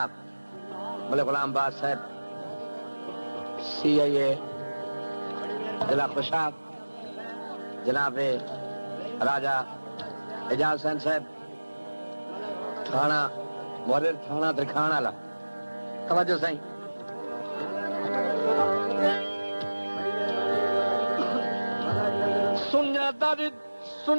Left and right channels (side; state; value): both; inverted; correlation -1.00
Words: मलिक गुलाम बाद साहब CIA जिला खुशाब, जनाब राजा एजाज हुसैन साहब थाना मुहर्रिर थाना तरखान वाला, तवज्जो साईं। सुन्या दर्द